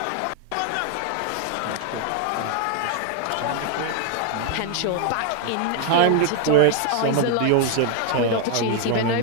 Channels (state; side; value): different; both; correlation 0.00